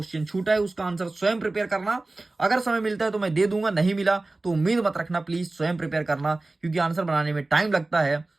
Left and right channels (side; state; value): left; quieter; 3.1 dB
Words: छूटा है उसका आंसर स्वयं प्रिपेयर करना। अगर समय मिलता है तो मैं दे दूंगा, नहीं मिला तो उम्मीद मत रखना, प्लीज स्वयं प्रिपेयर करना, क्योंकि आंसर बनाने में टाइम लगता है।